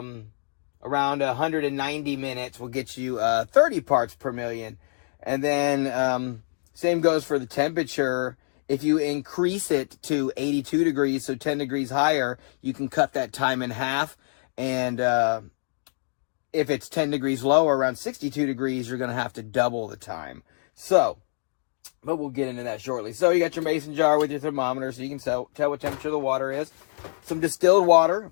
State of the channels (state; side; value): silent; right; digital silence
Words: around 190 minutes will get you 30 parts per million. And then same goes for the temperature. If you increase it to 82 degrees, so 10 degrees higher, you can cut that time in half. And if it's 10 degrees lower, around 62 degrees, you're going to have to double the time. So, but we'll get into that shortly. So you got your mason jar with your thermometer, so you can tell what temperature the water is. Some distilled water.